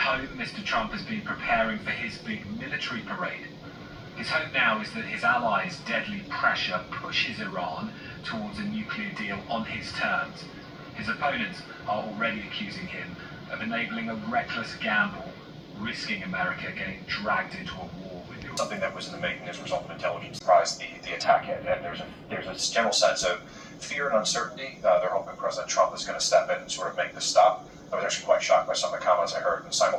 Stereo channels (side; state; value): both; identical; correlation 1.00